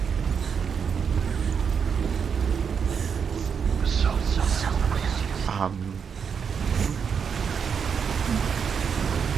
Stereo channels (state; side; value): quieter; left; 6.7 dB